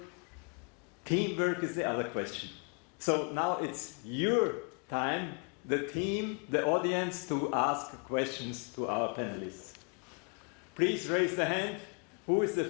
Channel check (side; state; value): right; quieter; 39.3 dB